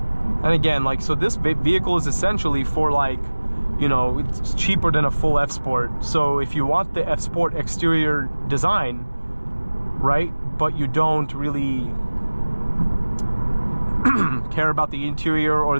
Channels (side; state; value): both; inverted; correlation -1.00